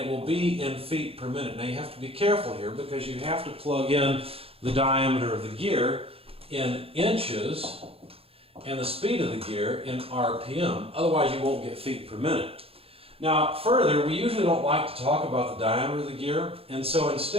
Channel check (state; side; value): late; left; 0.28 ms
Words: will be in feet per minute. Now, you have to be careful here because you have to plug in the diameter of the gear in inches and the speed of the gear in RPM. Otherwise, you won't get feet per minute. Now, further, we usually don't like to talk about the diameter of the gear, and so